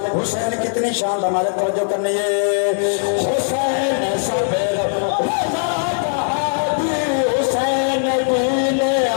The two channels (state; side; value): silent; right; digital silence